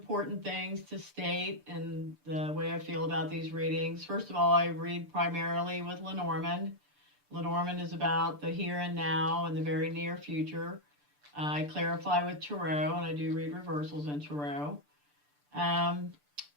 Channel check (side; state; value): left; late; 6.8 ms